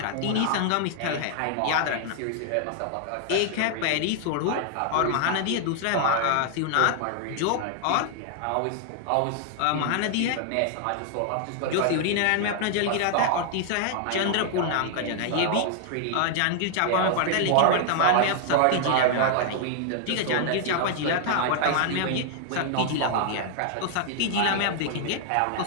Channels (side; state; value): both; different; correlation 0.00